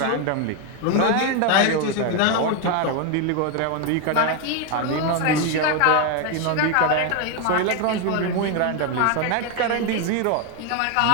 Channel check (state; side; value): different; both; correlation 0.01